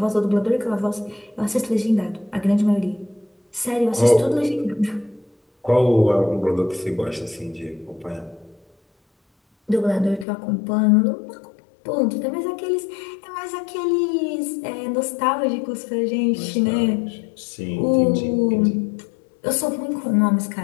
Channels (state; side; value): drops out; right; at 10.2 s